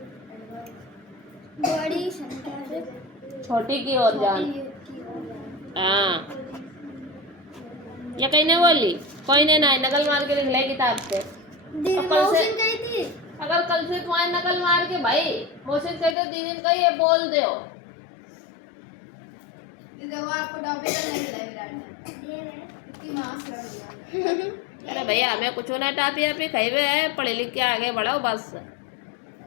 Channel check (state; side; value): drops out; right; at 16.2 s